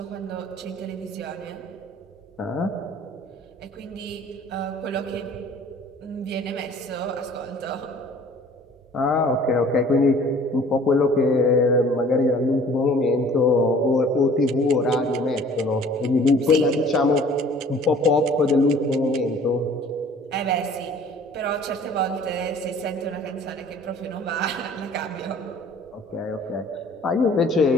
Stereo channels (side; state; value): both; normal; correlation 0.51